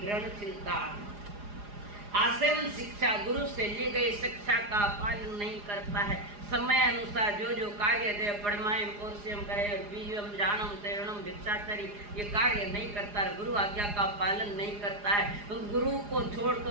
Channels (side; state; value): left; late; 4.9 ms